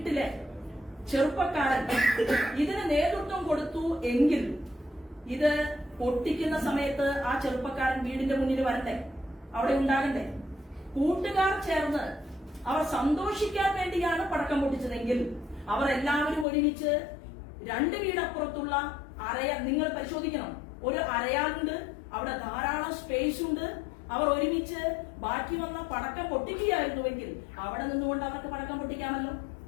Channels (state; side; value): drops out; right; at 16.4 s